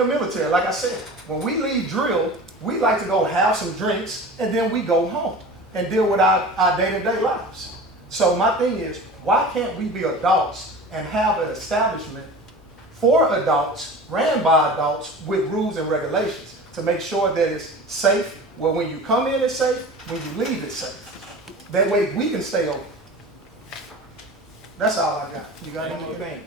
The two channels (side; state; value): both; normal; correlation 0.36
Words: military, like I said. When we leave drill, we like to go have some drinks, and then we go home and deal with our day-to-day lives. So my thing is, why can't we be adults and have an establishment for adults, ran by adults, with rules and regulations to make sure that it's safe, where when you come in it's safe, when you leave it's safe. That way we can stay open. That's all I got. You got One more anything?